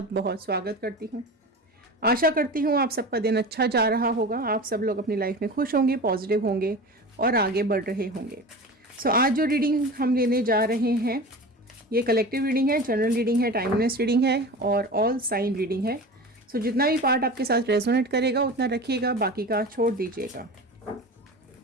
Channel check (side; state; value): both; normal; correlation 0.32